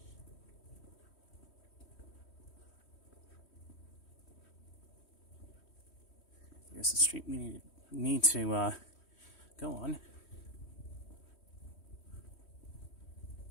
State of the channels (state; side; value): late; right; 3.1 ms